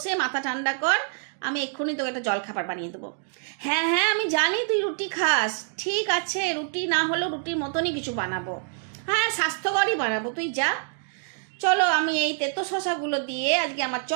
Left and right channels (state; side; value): silent; left; 61 dB below the other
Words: মাথা ঠান্ডা কর, আমি এক্ষুনি তোকে একটা জলখাবার বানিয়ে দেবো। হ্যাঁ হ্যাঁ, আমি জানি তুই রুটি খাস। ঠিক আছে, রুটি না হলেও রুটির মতনই কিছু বানাবো। হ্যাঁ, স্বাস্থ্যকরই বানাবো, তুই যা। চলো, আমি এই তেতো শশাগুলো দিয়ে আজকে আমার